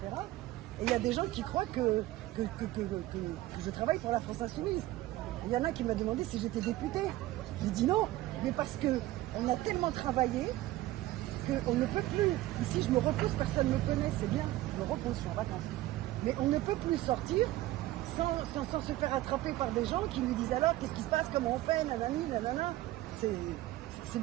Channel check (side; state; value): left; quieter; 16.5 dB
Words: Et il y a des gens qui croient que je travaille pour la France Insoumise. Il y en a qui m'ont demandé si j'étais députée. J'ai dit non, mais parce qu'on a tellement travaillé qu'on ne peut plus. Ici, je me repose, personne ne me connaît, c'est bien. Je me repose, je suis en vacances. Mais on ne peut plus sortir sans se faire attraper par des gens qui nous disent alors qu'est-ce qui se passe, comment on fait, nanani, nanana. C'est